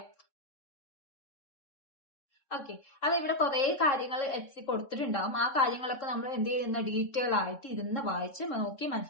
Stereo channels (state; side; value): late; right; 3.7 ms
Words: ഓക്കെ, അത് ഇവിടെ കുറെ കാര്യങ്ങൾ എറ്റ്സി കൊടുത്തിട്ടുണ്ടാവും. ആ കാര്യങ്ങളൊക്കെ നമ്മൾ എന്ത് ചെയ്യുന്ന ഡീറ്റെയിൽ ആയിട്ട് ഇരുന്ന് വായിച്ച് നോക്കി